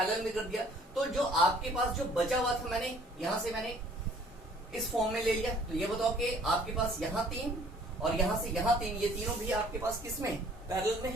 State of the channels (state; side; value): normal; both; correlation 0.56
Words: में कर दिया, तो जो आपके पास जो बचा हुआ था मैंने यहाँ से मैंने इस फॉर्म में ले लिया, तो ये बताओ कि आपके पास यहाँ 3 और यहाँ से यहाँ 3, ये तीनों भी आपके पास किस में, पैरेलल में